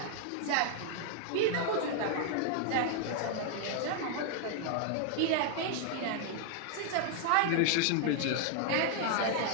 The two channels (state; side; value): different; both; correlation 0.00